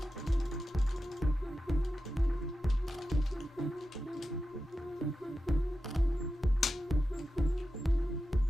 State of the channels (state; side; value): normal; both; correlation 0.91